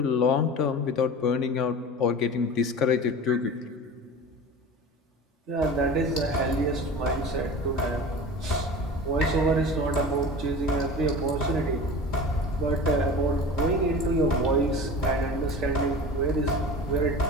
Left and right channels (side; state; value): both; normal; correlation 0.35